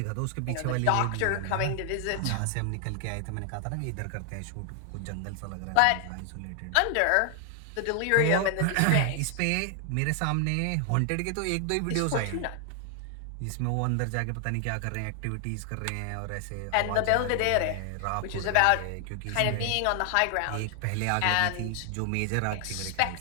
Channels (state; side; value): different; both; correlation 0.00